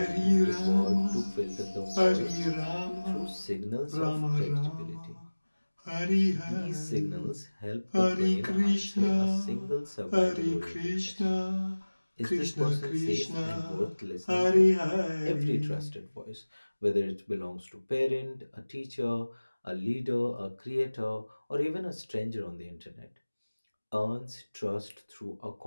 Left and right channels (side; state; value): both; inverted; correlation -1.00